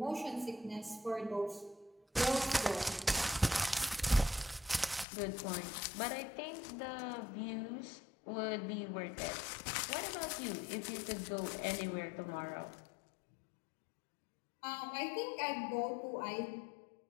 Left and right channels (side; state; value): right; drops out; at 5.1 s